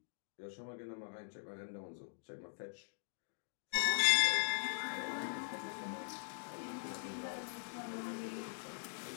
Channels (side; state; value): right; silent; digital silence